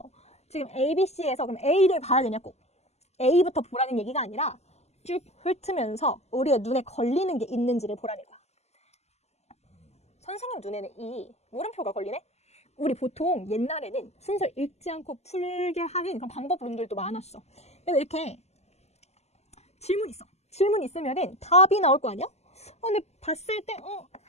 지금 A, B, C에서 그럼 A를 봐야 되냐 꼭. A부터 보라는 얘기가 아니라 쭉 훑으면서 우리의 눈에 걸리는 게 있는지를 보라는 거야. 선생님 눈에는 이 물음표가 걸리네? 우리 보통 옛날에는 순서 읽지 않고 풀게 하는 그런 방법론들도 많았어. 그래서 이렇게 질문 있어. 질문 있으면은 답이 나올 거 아니야? 근데 봤을 때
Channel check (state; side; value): late; right; 0.31 ms